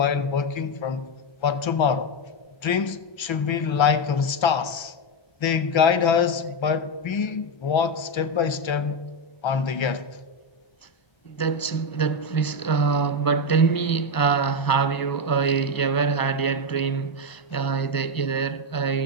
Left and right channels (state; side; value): late; right; 1.3 ms